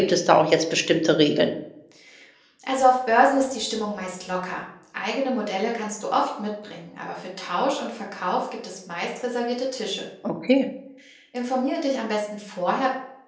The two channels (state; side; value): identical; both; correlation 1.00